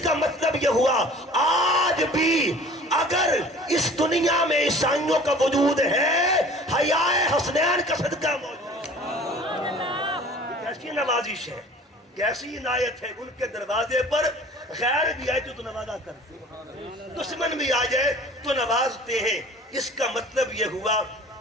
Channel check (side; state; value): both; normal; correlation 0.46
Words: کا مطلب یہ ہوا آج بھی اگر اس دنیا میں عیسائیوں کا وجود ہے، حیاء حسنین کا صدقہ موجود ہے۔ کیسی نوازش ہے، کیسی عنایت ہے، ان کے دروازے پر غیر بھی آئے تو نوازا کرتے ہیں، دشمن بھی آ جائے تو نوازتے ہیں۔ اس کا مطلب یہ ہوا